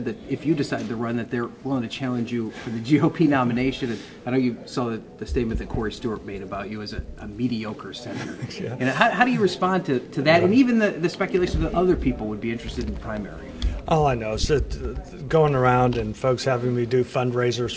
that if you decide to run, that they're willing to challenge you for the GOP nomination. And I know you saw the statement that Corey Stewart made about you as a mediocre senator. Yeah. And how do you respond to that? And even the speculation that other people would be interested in the primary. All I know is that going around and folks having me do fundraisers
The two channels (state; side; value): identical; both; correlation 1.00